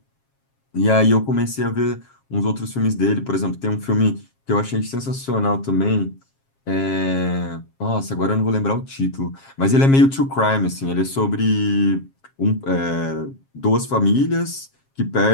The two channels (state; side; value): late; right; 7.4 ms